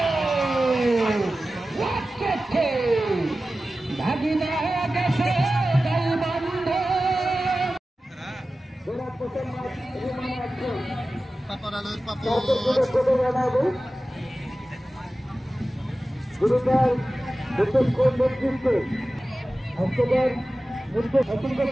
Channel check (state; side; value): normal; both; correlation 0.95